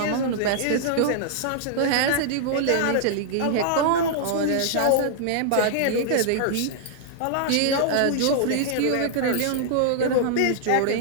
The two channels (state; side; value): different; both; correlation -0.01